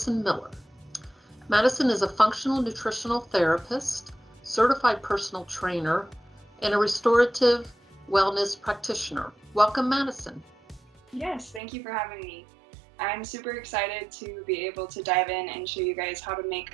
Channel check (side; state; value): left; drops out; at 11.6 s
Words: Miller. Madison is a functional nutritional therapist, certified personal trainer, and a restorative wellness practitioner. Welcome, Madison. Yes, thank you for having me. I'm super excited to be able to dive in and show you guys how to make